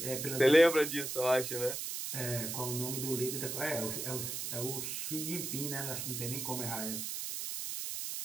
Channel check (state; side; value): noise; right; hiss, 4 dB below the sound